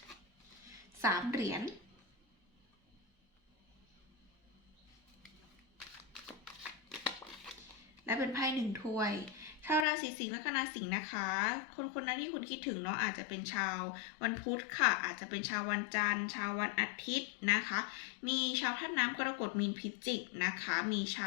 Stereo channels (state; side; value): drops out; right; at 9.9 s